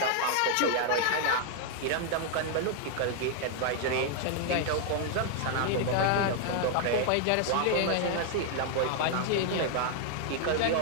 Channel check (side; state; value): both; different; correlation 0.00